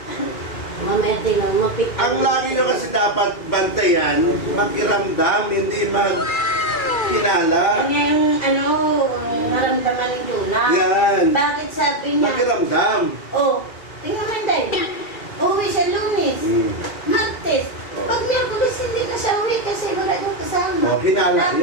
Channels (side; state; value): right; late; 2.3 ms